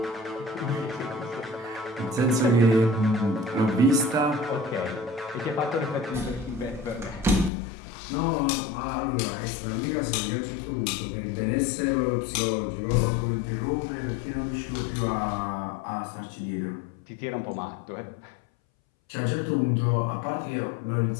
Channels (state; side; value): drops out; right; at 7.5 s